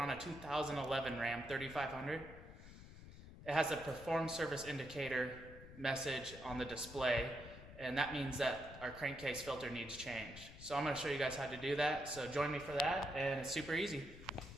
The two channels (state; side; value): noise; left; rumble, 15 dB below the sound